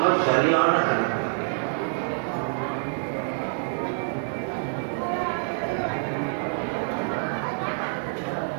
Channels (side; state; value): left; silent; 61 dB below the other